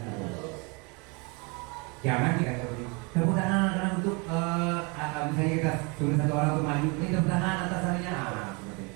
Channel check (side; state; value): left; quieter; 30.4 dB